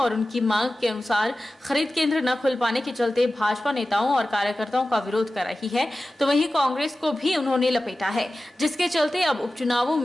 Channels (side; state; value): both; normal; correlation 0.95